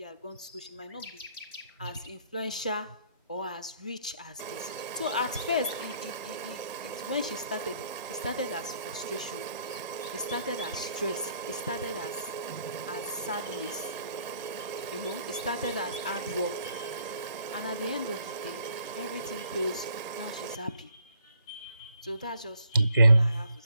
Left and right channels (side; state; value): both; inverted; correlation -0.65